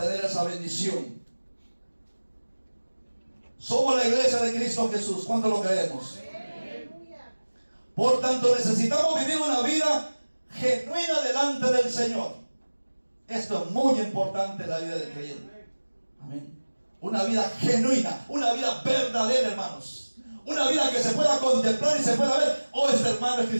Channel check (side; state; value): both; inverted; correlation -1.00